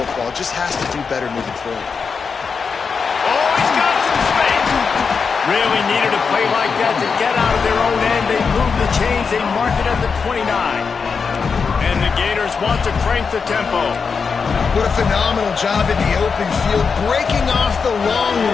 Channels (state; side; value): quieter; right; 5.5 dB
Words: It just has to do better moving forward. Oh, he's got some space. Really needed a play like that to get out of their own end. They move the chains. They mark it at the 29. And the Gators want to crank the tempo. What a phenomenal job in the open field, breaking off the long